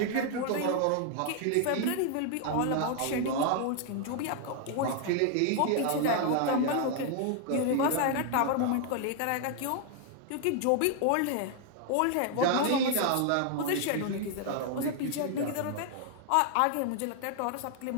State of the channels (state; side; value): different; both; correlation 0.00